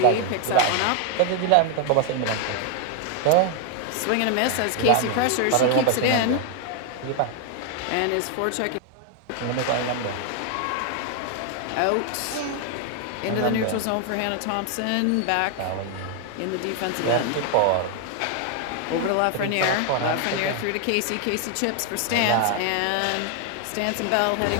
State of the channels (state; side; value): different; both; correlation 0.00